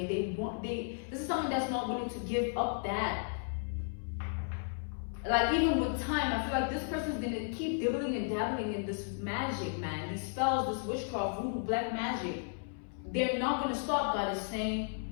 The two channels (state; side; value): silent; right; 55 dB below the other